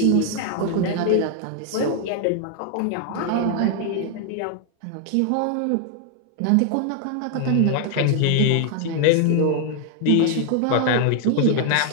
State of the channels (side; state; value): both; different; correlation 0.00